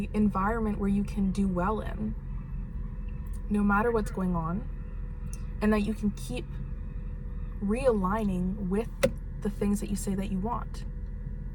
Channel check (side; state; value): both; identical; correlation 1.00